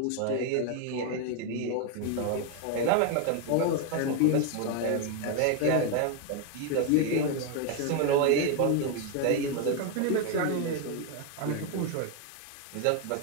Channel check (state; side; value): different; both; correlation 0.01